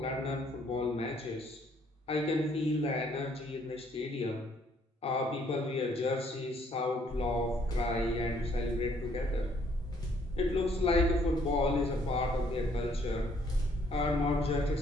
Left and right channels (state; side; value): normal; both; correlation 0.65